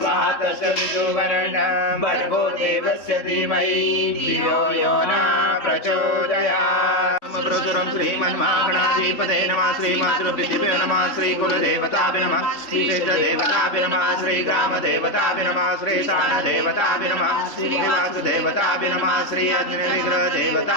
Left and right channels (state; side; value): late; right; 3.6 ms